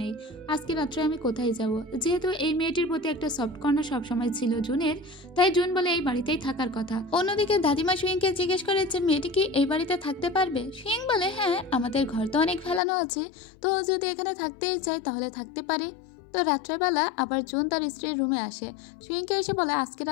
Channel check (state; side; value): drops out; right; at 12.8 s